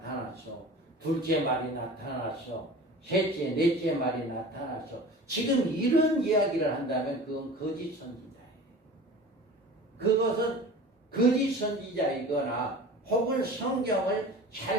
둘째 말이 나타났어. 셋째, 넷째 말이 나타났어. 지금 이런 이야기를 한다면 그건 거짓 선지자예요. 그것은 거짓 선지자이거나 혹은 성경을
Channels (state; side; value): normal; both; correlation 0.38